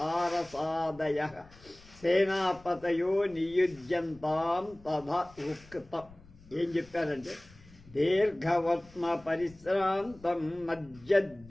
సేనాపతయో నియుజ్యంతాం తథా ఉక్తం. ఏం చెప్పారంటే, దీర్ఘవర్త్మ పరిశ్రాంతం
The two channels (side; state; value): left; noise; rumble, 23 dB below the sound